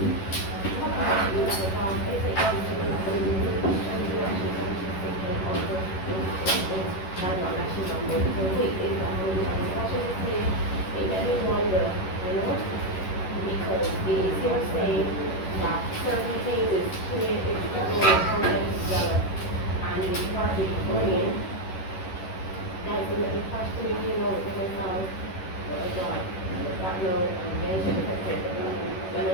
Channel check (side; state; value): right; late; 11 ms